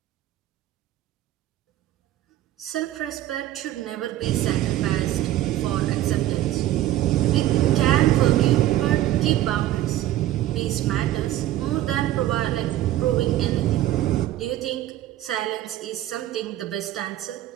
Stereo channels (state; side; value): quieter; left; 13.9 dB